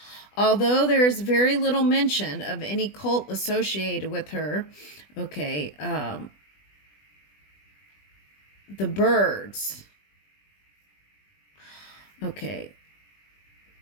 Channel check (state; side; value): late; right; 20 ms